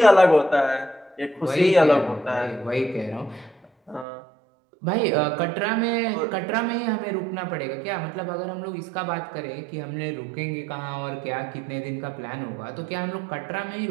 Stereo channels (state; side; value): drops out; left; at 4.0 s